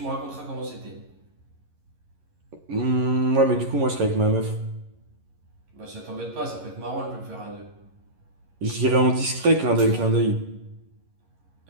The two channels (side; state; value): left; late; 11 ms